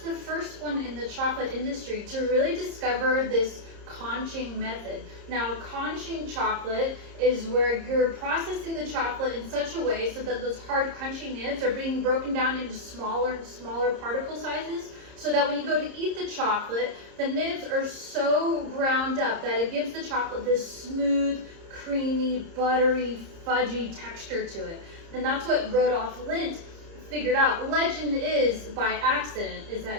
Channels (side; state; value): left; late; 30 ms